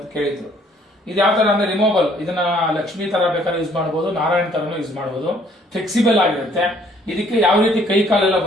ಕೇಳಿದ್ರು. ಇದು ಯಾವ ಥರ ಅಂದರೆ ರಿಮೂವಬಲ್, ಇದನ್ನ ಲಕ್ಷ್ಮೀ ಥರ ಬೇಕಾದ್ರೆ ಯೂಸ್ ಮಾಡ್ಬೋದು, ನಾರಾಯಣ ಥರನೂ ಯೂಸ್ ಮಾಡ್ಬೋದು, ಫ್ಲೆಕ್ಸಿಬಲ್ ಆಗಿರುತ್ತೆ. ಇದಕ್ಕೆ ಯಾವ ರೀತಿ ಕೈ ಕಾಲೆಲ್ಲ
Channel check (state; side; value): normal; both; correlation 0.62